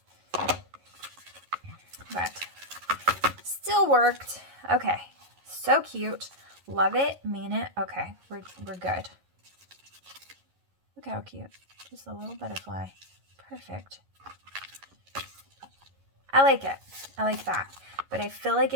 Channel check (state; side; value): late; left; 11 ms